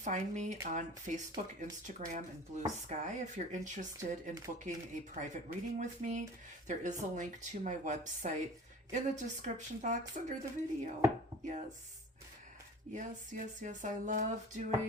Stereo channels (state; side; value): normal; both; correlation 0.42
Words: me on Facebook, Instagram, and Blue Sky. If you're interested in booking a private reading with me, there is a link to my website in the description box under the video. Yes. I love